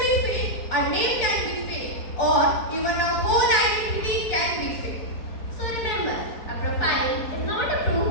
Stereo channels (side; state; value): right; late; 4.7 ms